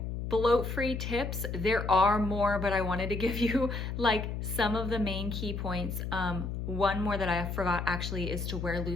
bloat-free tips. There are more, but I wanted to give you like some of the main key points. One more that I forgot actually is to wear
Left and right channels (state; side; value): noise; left; hum, 4 dB below the sound